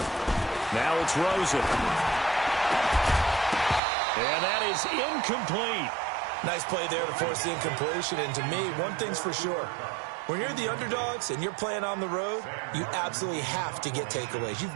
Now it's Rosen. And that is incomplete. Nice play there to force the incompletion. And to me, one thing's for sure. When you're the underdogs and you're playing on the road, you absolutely have to get takeaways.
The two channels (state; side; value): drops out; left; at 3.8 s